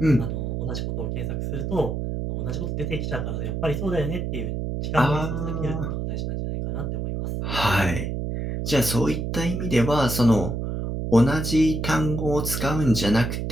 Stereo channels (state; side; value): noise; right; hum, 3 dB below the sound